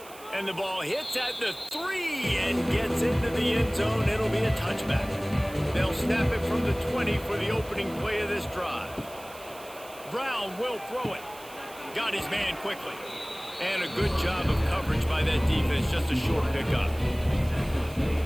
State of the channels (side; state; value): right; noise; hiss, 19 dB below the sound